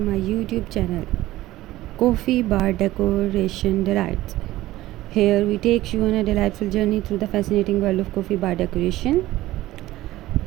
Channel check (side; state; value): left; quieter; 16.3 dB